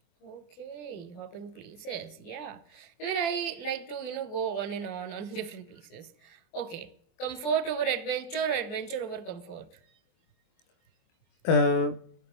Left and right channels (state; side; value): late; right; 24 ms